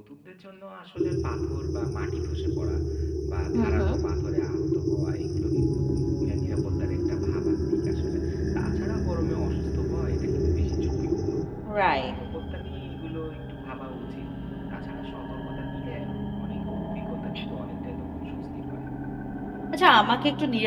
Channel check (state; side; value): identical; both; correlation 1.00